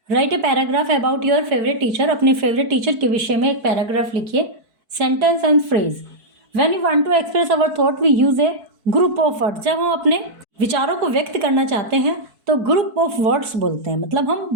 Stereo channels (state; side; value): late; left; 4.6 ms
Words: Write a paragraph about your favourite teacher. अपने favourite teacher के विषय में एक paragraph लिखिए. Sentence and phrase. When you want to express our thought we use a group of words. जब हम अपने विचारों को व्यक्त करना चाहते हैं तो ग्रुप ऑफ वर्ड्स बोलते हैं. मतलब हम